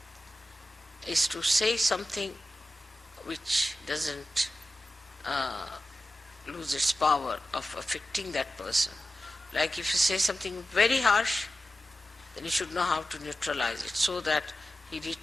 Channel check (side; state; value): both; normal; correlation 0.93